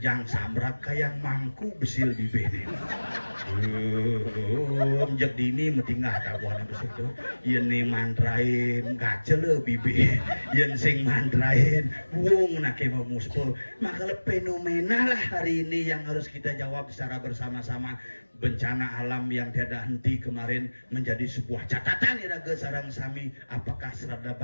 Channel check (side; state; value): both; inverted; correlation -1.00